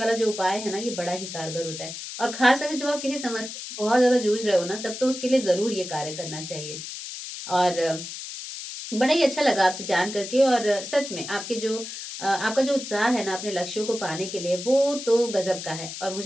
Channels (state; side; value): noise; left; hiss, 9 dB below the sound